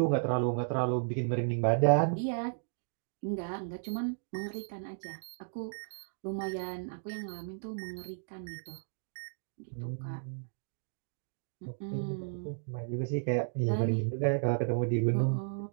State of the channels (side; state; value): left; silent; digital silence